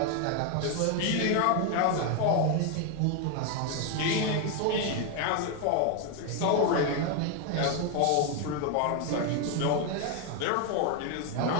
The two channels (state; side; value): different; both; correlation 0.01